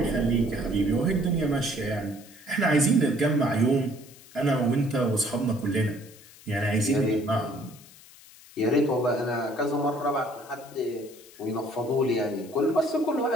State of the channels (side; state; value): left; noise; hiss, 22 dB below the sound